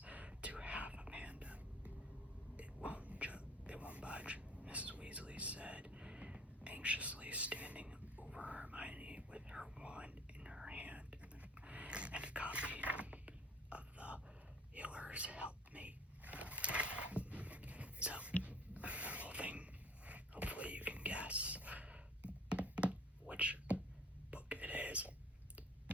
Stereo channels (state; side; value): normal; both; correlation 0.52